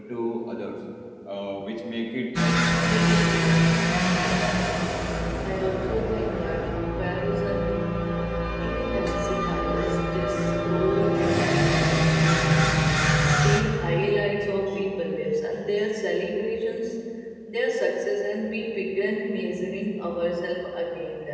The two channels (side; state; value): both; identical; correlation 1.00